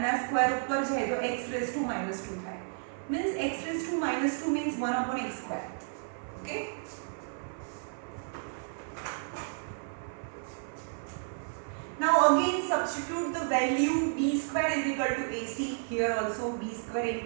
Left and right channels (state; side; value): silent; left; 56 dB below the other